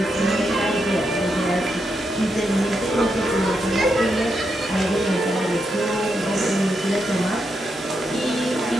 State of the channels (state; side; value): normal; both; correlation 0.83